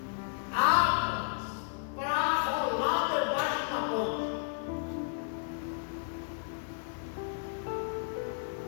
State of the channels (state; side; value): silent; right; 56 dB below the other